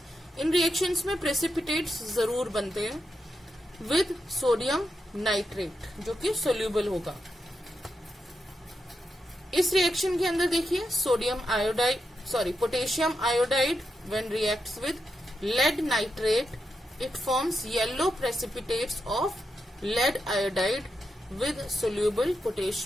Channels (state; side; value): normal; both; correlation 0.86